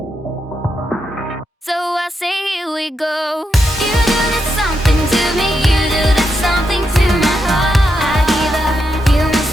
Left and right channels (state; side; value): normal; both; correlation 0.83